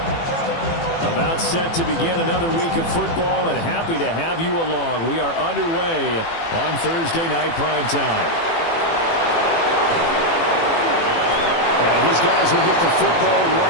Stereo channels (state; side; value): late; right; 18 ms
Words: About set to begin another week of football, and happy to have you along. We are underway on Thursday night primetime. And his guys will get the football